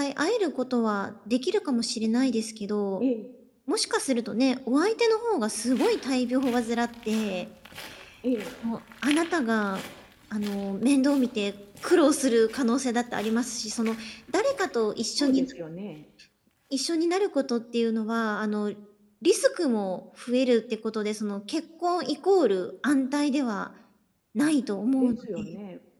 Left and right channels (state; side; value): identical; both; correlation 1.00